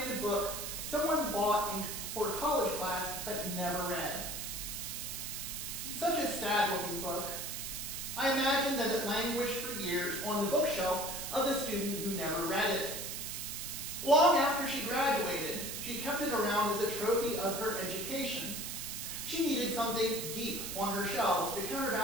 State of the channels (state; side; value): noise; right; hiss, 5 dB below the sound